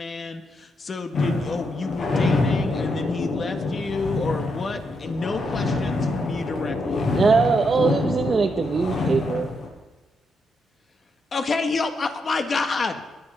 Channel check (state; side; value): normal; both; correlation 0.80